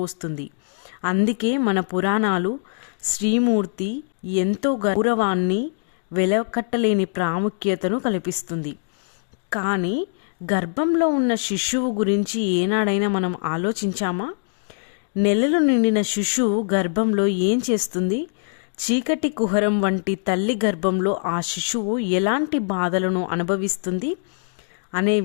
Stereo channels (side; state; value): right; silent; digital silence